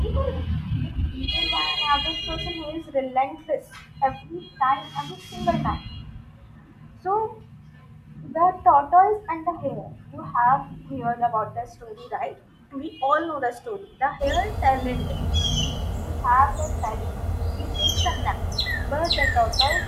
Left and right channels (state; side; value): identical; both; correlation 1.00